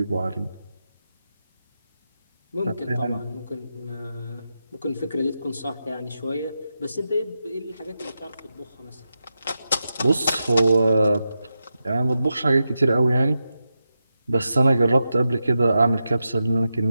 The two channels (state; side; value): inverted; both; correlation -0.89